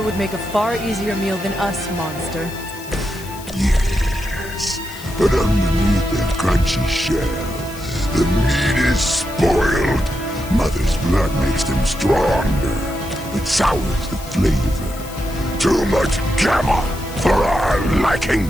would make a far easier meal than us, monster. Yes, but underneath that crunchy shell, the meat is spoiled. Mother's blood makes them stronger, but sours the flavor. Too much gamma for our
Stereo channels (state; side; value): noise; left; hiss, 16 dB below the sound